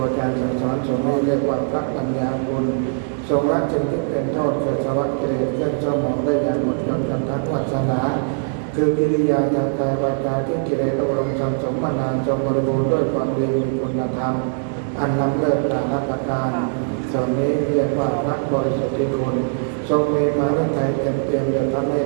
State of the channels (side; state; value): left; silent; digital silence